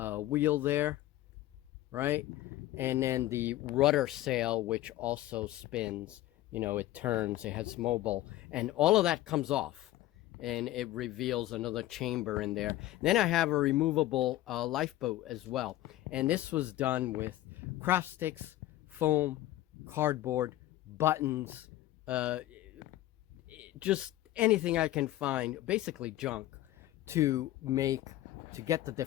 there, right? And then the rudder sail, which also spins, you know, it turns, it has mobile, and all of that comes off, and it reveals another chamber in there. Then I have a removable lifeboat as well, and this was done with craft sticks, foam, cardboard, buttons, just anything I can find, basically junk, to get the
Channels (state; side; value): quieter; right; 15.1 dB